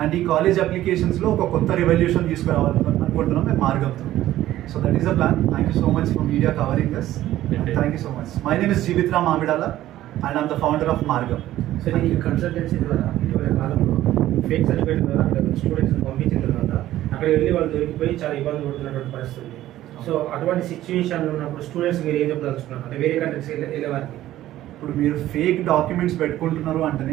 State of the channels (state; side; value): quieter; left; 14.1 dB